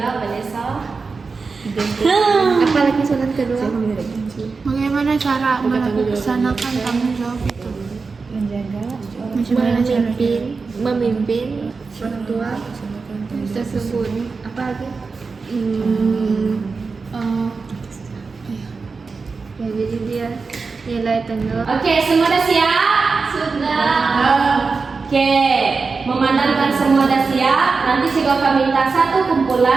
Vanessa. Apalagi soalan kedua? Bagaimana cara melaksanakan tanggung jawab itu? Memimpin orang tua tersebut. Apa lagi? Ya, jadi dia nilai tanggung. Oke, semua dah siap? Sudah. Oke, memandangkan semua dah siap, nanti saya akan minta satu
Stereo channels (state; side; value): quieter; left; 4.5 dB